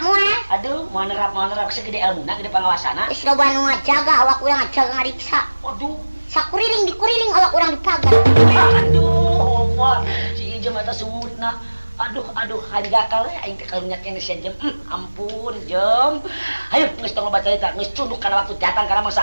moal. Aduh, mau nerap segede ilmuna, gede pangawasana. Geus loba nu ngajaga awak urang ngajaga ngariksa. Waduh. Dikuriling awak urang dipagar. Aduh, Omar, si Ijem eta sumutna. Aduh, hanjakal we aing teh karunya kene sia Jem. Ampun, Jem. Hayu geus tong baca cerita, geus cunduk kana waktu datang kana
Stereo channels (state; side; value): inverted; both; correlation -1.00